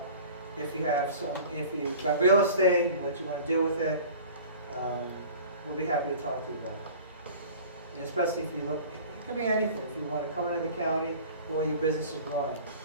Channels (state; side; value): inverted; both; correlation -0.42